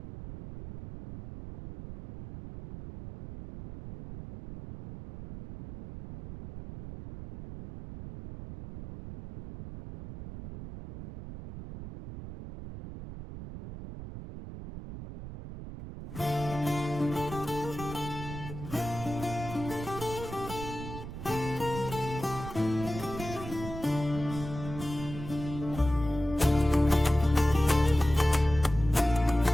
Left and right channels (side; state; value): right; noise; rumble, 10 dB below the sound